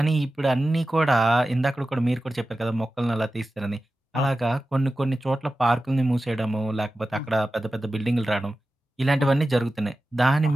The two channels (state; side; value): normal; both; correlation 0.94